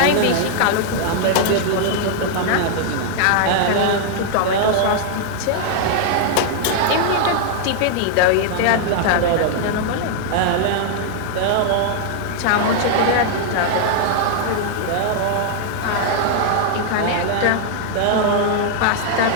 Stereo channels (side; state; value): both; different; correlation 0.00